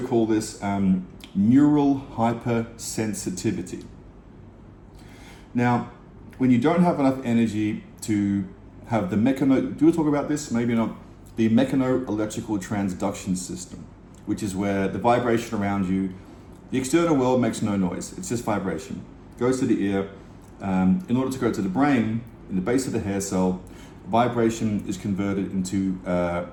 this neural hypersensitivity. Now, when you don't have enough energy to have the do we talk about this? Maybe not. The mechano-electrical transduction system, which is where the vibration around you, the external world makes no noise, it's just vibration. Goes to the ear. In order to go to the brain, in the base of the hair cell, vibration is converted into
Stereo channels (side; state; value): both; identical; correlation 1.00